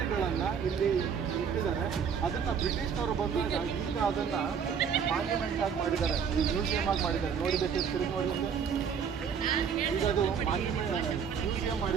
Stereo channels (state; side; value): quieter; left; 7.0 dB